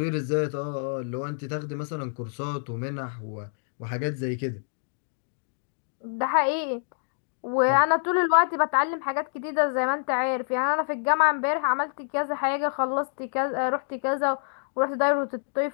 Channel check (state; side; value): silent; right; digital silence